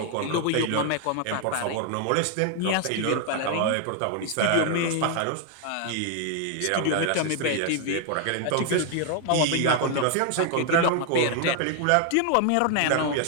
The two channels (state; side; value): different; both; correlation 0.00